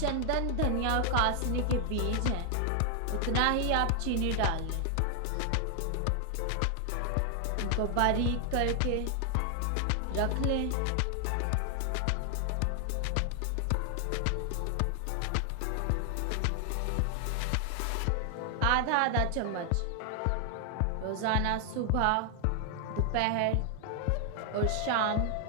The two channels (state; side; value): different; both; correlation 0.00